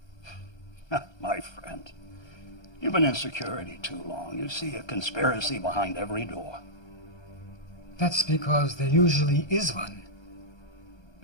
My friend, you've been in security too long. You see a conspiracy behind every door. That's because there usually is one.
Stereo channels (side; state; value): right; late; 1.3 ms